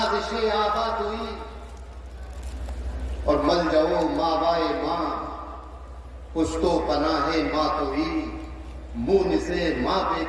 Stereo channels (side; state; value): both; identical; correlation 1.00